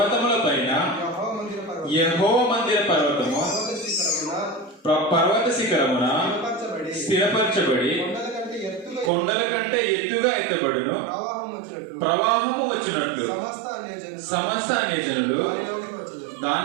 పైన యెహోవా మందిర పర్వతము పర్వత శిఖరమున స్థిరపరచబడి కొండల కంటే ఎత్తుగా ఎత్తబడును. ప్రవాహము వచ్చినట్లు సమస్త అన్యజనులు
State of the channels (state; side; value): drops out; left; at 9.1 s